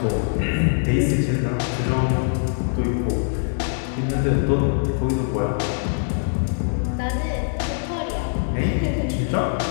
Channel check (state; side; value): silent; right; digital silence